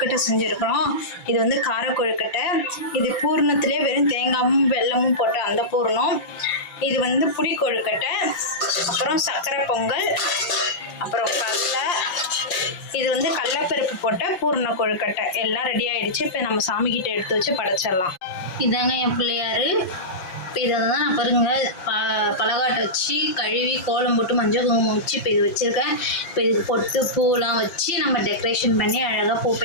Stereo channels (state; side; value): late; right; 5.7 ms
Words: செஞ்சுருக்கிறோம். இது வந்து கார கொழுக்கட்டை. இது பூர்ணத்திலே வெறும் தேங்காயும் வெல்லமும் போட்ட அந்த பூர்ணம். இது வந்து புடி கொழுக்கட்டை, அப்புறம் சர்க்கரை பொங்கல், அப்புறம் கடலை. இது வந்து கடலைப்பருப்பு போட்ட பூர்ண கொழுக்கட்டை. எல்லாம் ரெடி ஆகிடுச்சு. இப்போ நம்ம சாமிக்கிட்ட எடுத்து வச்சு படைச்சிடலாம். இதாங்க என் பிள்ளையார். இப்போ இதை தான் நான் பாருங்கள் பலகாட்டை வச்சு கழுவி கோலம் போட்டு மஞ்சள் குங்குமம் வச்சு இப்போ இது வச்சுருக்கேன். இப்போ இதுக்கு பொட்டு பூலாம் வச்சு நம்ம டெக்கரேஷன் பண்ணி அழகாக